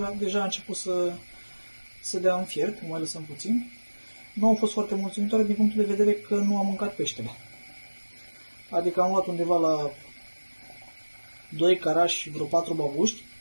deja a început să dea în fiert, mai lăsăm puțin. Nu au fost foarte mulțumitoare din punctul de vedere că nu am mâncat peștele. Adică am luat undeva la 2 carași și vreo 4 babuști,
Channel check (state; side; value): inverted; both; correlation -1.00